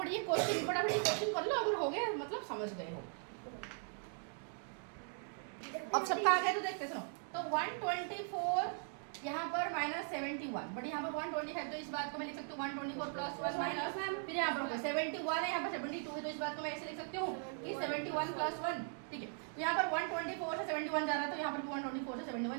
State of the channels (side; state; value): left; silent; 51 dB below the other